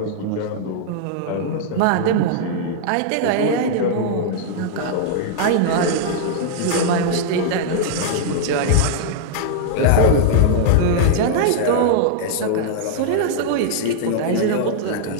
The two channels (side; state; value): both; different; correlation -0.01